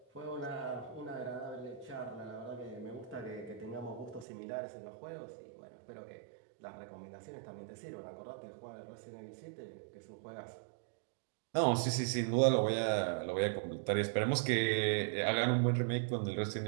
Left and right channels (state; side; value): drops out; left; at 4.2 s